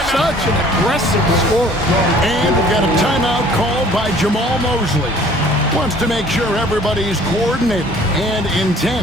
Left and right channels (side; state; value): both; normal; correlation 0.53